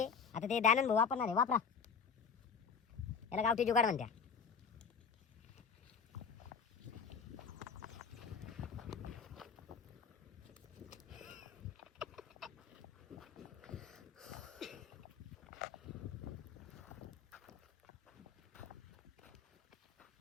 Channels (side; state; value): right; quieter; 6.3 dB